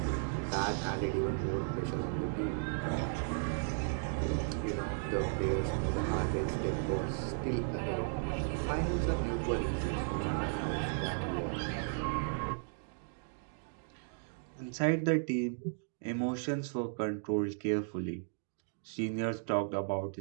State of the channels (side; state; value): left; silent; digital silence